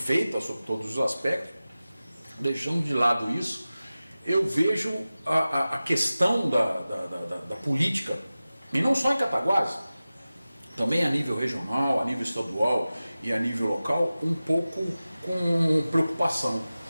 sobre todos os aspectos. Deixando de lado isso, eu vejo a questão da política, e não só em Cataguases, também a nível regional, a nível estadual e a nível local, um pouco com preocupação.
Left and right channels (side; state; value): both; inverted; correlation -0.96